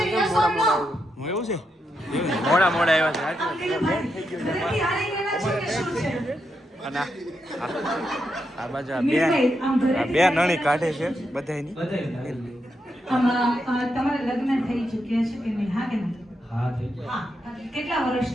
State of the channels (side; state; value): both; normal; correlation 0.84